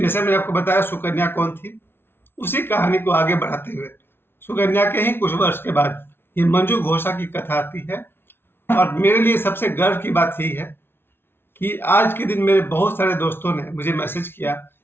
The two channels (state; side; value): late; right; 0.11 ms